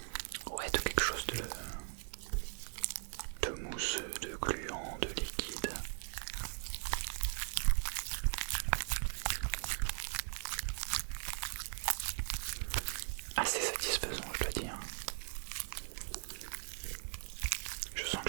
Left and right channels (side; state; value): left; silent; digital silence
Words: Ouais, de quelque chose de mousse, de gluant, de liquide. Assez satisfaisant, je dois dire. Je sens